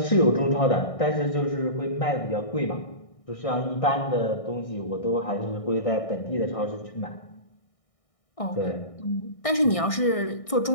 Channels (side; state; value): right; late; 1.6 ms